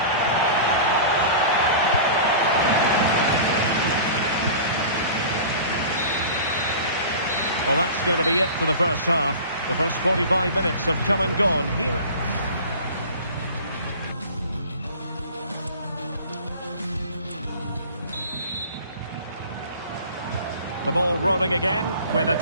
Well, that's going to be it for the first half. The first 45 minutes have come and gone here. The ball rolling again, with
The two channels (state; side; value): inverted; both; correlation -0.39